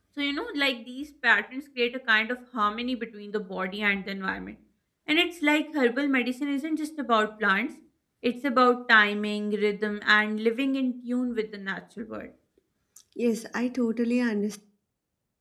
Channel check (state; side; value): identical; both; correlation 1.00